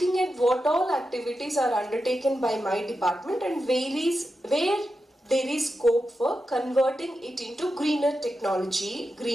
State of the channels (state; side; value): normal; both; correlation 0.89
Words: at what all activities are undertaken by my department and where there is scope for converting it into greener technology,